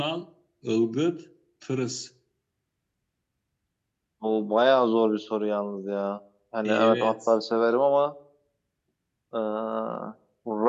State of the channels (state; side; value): identical; both; correlation 1.00